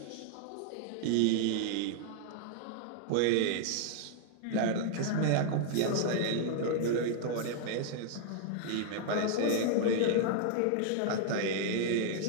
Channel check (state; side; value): different; both; correlation -0.01